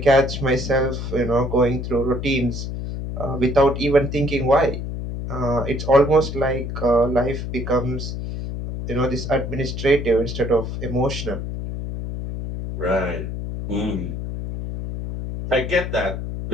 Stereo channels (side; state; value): left; noise; hum, 5 dB below the sound